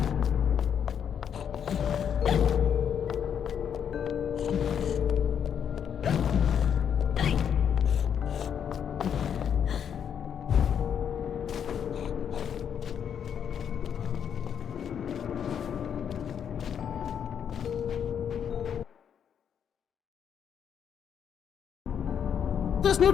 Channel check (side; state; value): right; quieter; 8.2 dB